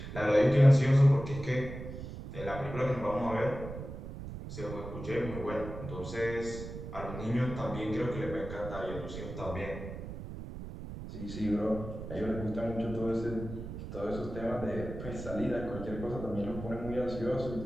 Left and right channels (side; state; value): right; noise; rumble, 9 dB below the sound